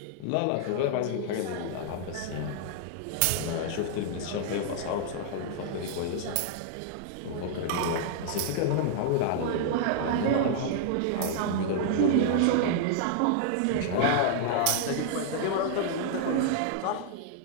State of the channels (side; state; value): both; different; correlation -0.01